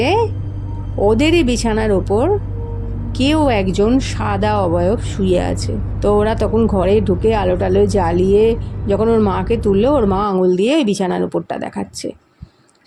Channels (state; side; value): identical; both; correlation 1.00